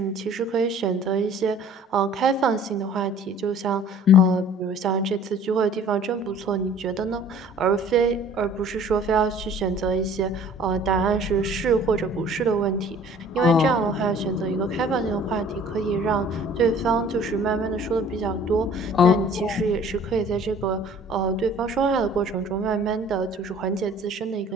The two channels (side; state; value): both; normal; correlation 0.51